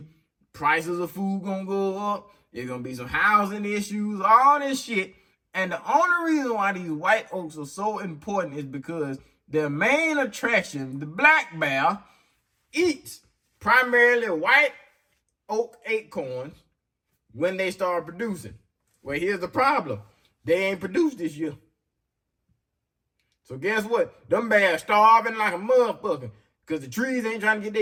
prices of food gonna go up. There's gonna be some housing issues, all this shit. And the only reason why these white oaks are so important is because their main attraction, the black bear, eats primarily white oak acorns when they start producing. Well, here's the problem. They ain't produced this year. So guess what? Them bears starving like a motherfucker because the trees ain't trying to get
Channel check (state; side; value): identical; both; correlation 1.00